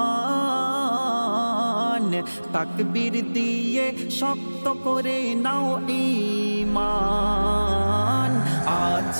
তাকবীর দিয়ে শক্ত করে নাও ঈমান। আজ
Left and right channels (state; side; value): inverted; both; correlation -1.00